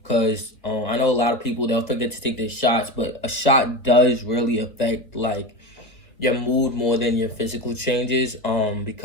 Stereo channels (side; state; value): right; late; 1.9 ms